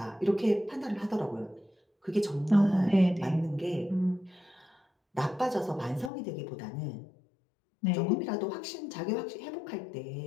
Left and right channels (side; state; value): right; drops out; at 6.1 s